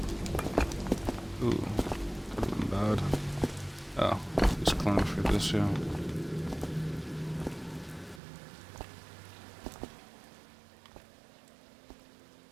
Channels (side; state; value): left; drops out; at 8.2 s